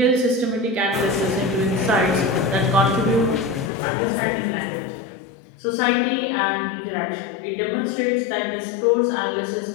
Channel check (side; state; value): right; drops out; at 3.7 s